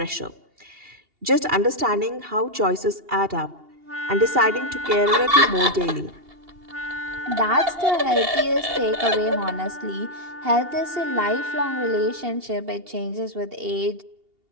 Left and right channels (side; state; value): left; late; 2.8 ms